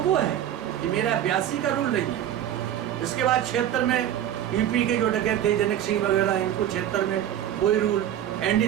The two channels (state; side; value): quieter; left; 11.1 dB